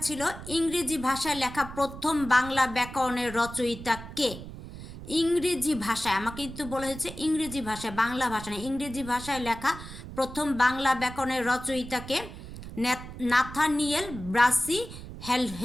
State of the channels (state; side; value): noise; right; rumble, 12 dB below the sound